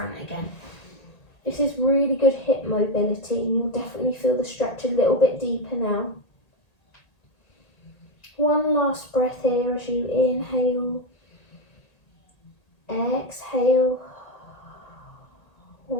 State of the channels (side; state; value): right; late; 1.8 ms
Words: again. This is really good hip mobility. You'll definitely feel the stretch a little bit deeper now. One last breath here as you inhale, exhale.